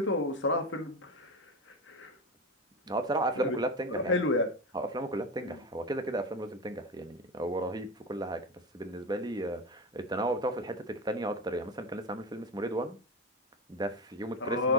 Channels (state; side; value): normal; both; correlation 0.20